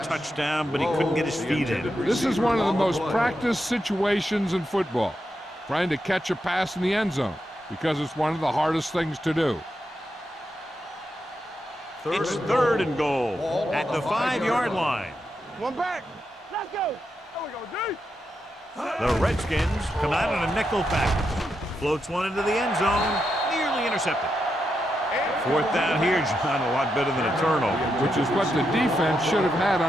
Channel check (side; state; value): both; normal; correlation 0.85